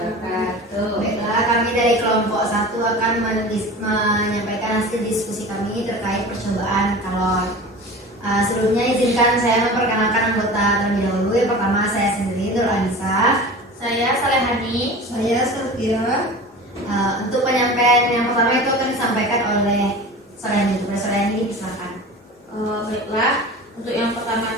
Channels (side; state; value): both; normal; correlation 0.36